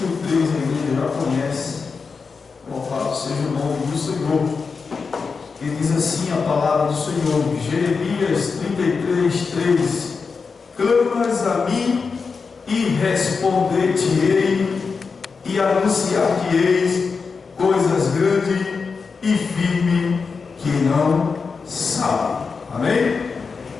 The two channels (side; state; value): right; quieter; 5.0 dB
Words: 3. A igreja já conhece. Louvado seja o nome do Senhor. E diz assim a palavra do Senhor, Jeremias 33, 3. Clamas a mim e responder-te-ei e anunciar-te-eis coisas grandes e firmes que não sabe. Amém?